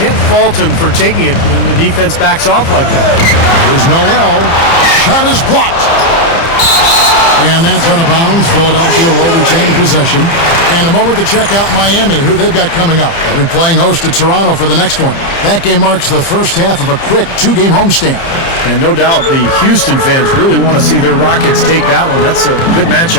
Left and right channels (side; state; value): right; late; 30 ms